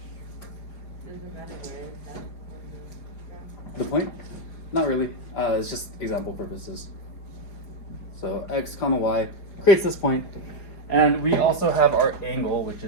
The point? Not really. It's just example purposes. So x comma y creates this point, and we also have our angle, which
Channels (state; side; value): late; right; 4.9 ms